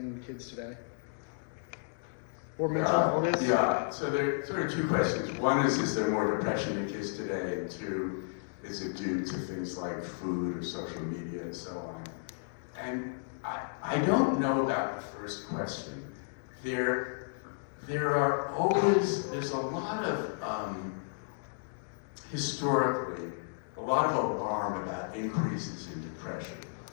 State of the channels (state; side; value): silent; right; digital silence